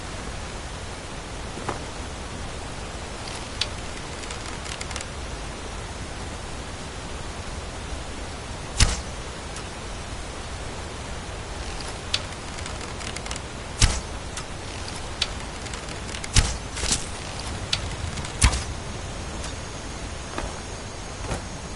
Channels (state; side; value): identical; both; correlation 1.00